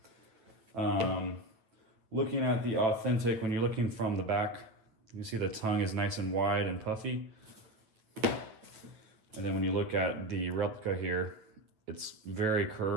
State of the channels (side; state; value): left; late; 9.2 ms